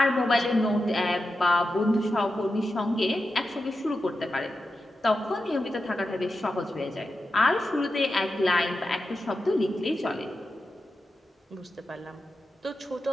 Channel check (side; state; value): both; normal; correlation 0.90